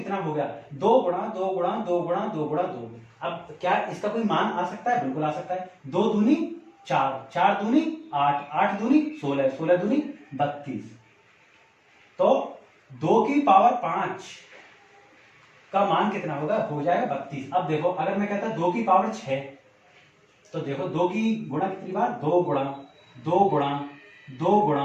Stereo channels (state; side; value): identical; both; correlation 1.00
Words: हो गया? 2 गुणा 2 गुणा 2 गुणा 2 गुणा 2। अब क्या इसका कोई मान आ सकता है? बिल्कुल आ सकता है। 2 दूनी 4, 4 दूनी 8, 8 दूनी 16, 16 दूनी 32। तो 2 की पावर 5 का मान कितना होगा? हो जाएगा 32। अब देखो, अगर मैं कहता 2 की पावर 6 तो देखो 2 की गुणा कितनी बार? 2 गुणा 2 गुणा 2